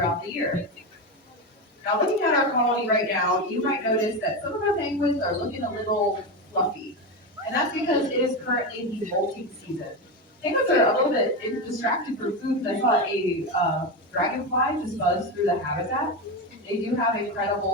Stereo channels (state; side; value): normal; both; correlation 0.16